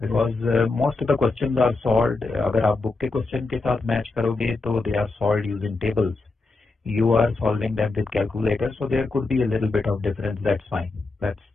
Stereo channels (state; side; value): quieter; right; 3.6 dB